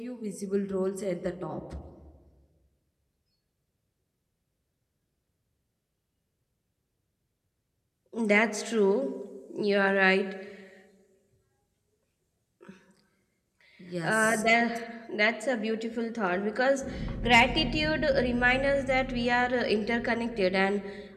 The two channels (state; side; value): identical; both; correlation 1.00